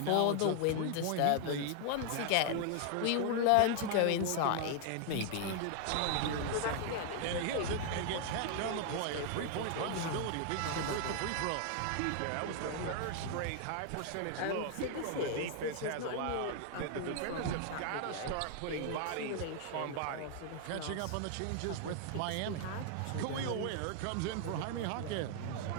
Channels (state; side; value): different; both; correlation 0.00